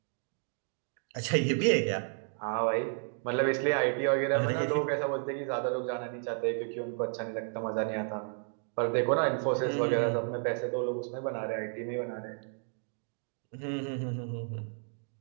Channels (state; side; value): silent; left; 56 dB below the other